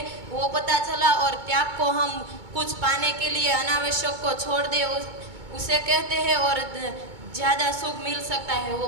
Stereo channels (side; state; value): left; late; 2.2 ms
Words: वो पता चला। और त्याग को हम कुछ पाने के लिए अनावश्यक को छोड़ दे उसे कहते हैं, और ज़्यादा सुख मिल सकता है